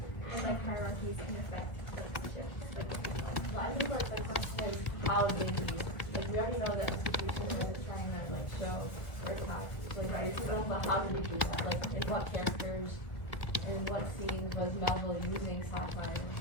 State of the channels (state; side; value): late; right; 1.4 ms